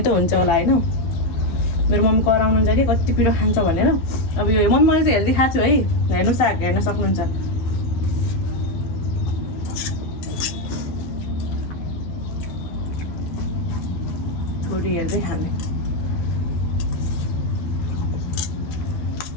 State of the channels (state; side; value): late; right; 12 ms